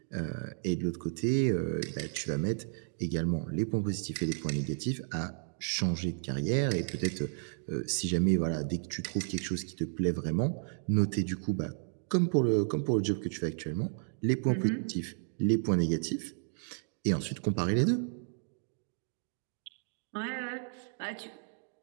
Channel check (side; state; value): left; silent; digital silence